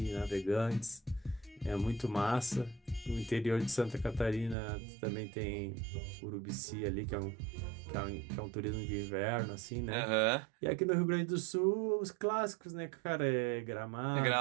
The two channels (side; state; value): left; drops out; at 4.5 s